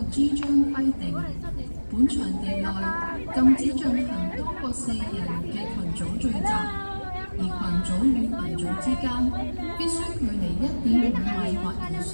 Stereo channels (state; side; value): inverted; both; correlation -1.00